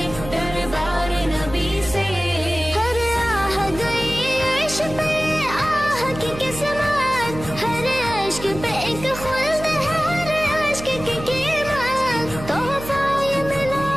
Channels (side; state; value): right; noise; hum, 11 dB below the sound